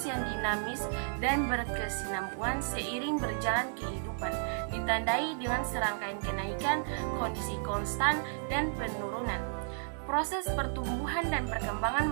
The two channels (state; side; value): silent; left; 56 dB below the other